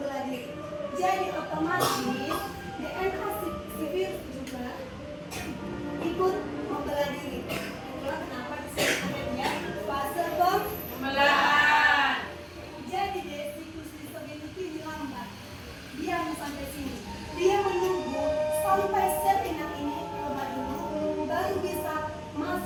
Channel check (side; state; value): both; identical; correlation 1.00